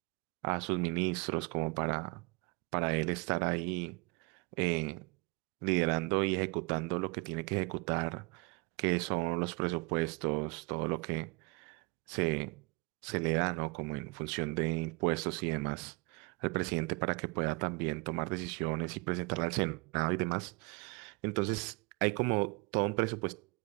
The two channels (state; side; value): quieter; left; 28.0 dB